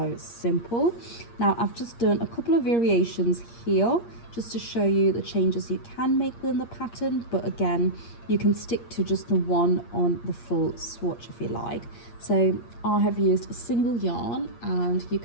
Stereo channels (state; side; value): late; right; 8.6 ms